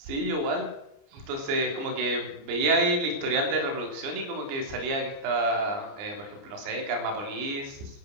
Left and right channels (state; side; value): late; left; 29 ms